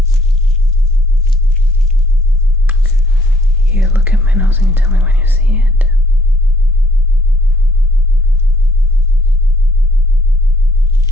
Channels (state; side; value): normal; both; correlation 0.62